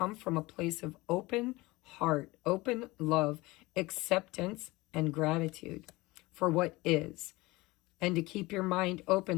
from a place of open heart, open love, acceptance, and gratitude for what is. And to keep your mind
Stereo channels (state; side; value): quieter; right; 21.4 dB